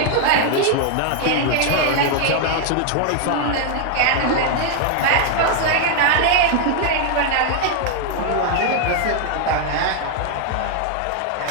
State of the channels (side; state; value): both; different; correlation 0.00